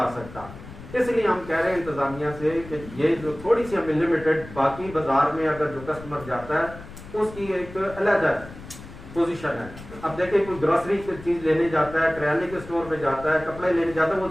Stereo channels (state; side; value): noise; left; rumble, 15 dB below the sound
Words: سکتا. اس لیے ہم کہہ رہے ہیں انتظامیہ سے کہ یہ جو تھوڑی سی ہمیں لمیٹڈ, باقی بازار میں اگر جو کسٹمر جاتا ہے اس کی ایک علیحدہ پوزیشن ہے. اب دیکھیں کوئی گروسری کی چیز لینے جاتا ہے, کریانے کے اسٹور پہ جاتا ہے, کپڑے لینے جاتا ہے, وہ